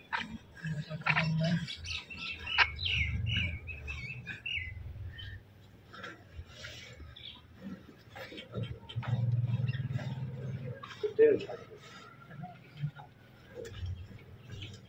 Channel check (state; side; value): identical; both; correlation 1.00